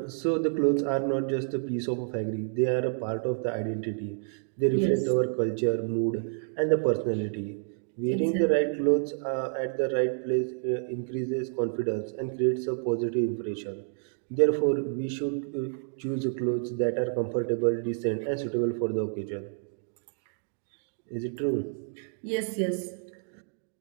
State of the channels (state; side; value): silent; left; digital silence